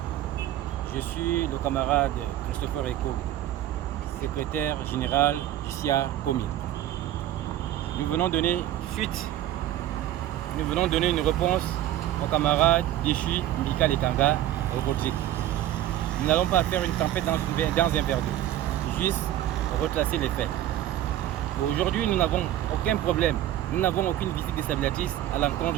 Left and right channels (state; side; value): quieter; left; 12.8 dB